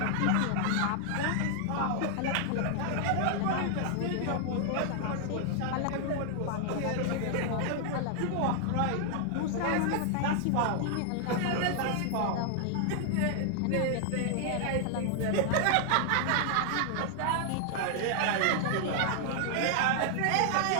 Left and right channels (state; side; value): different; both; correlation 0.00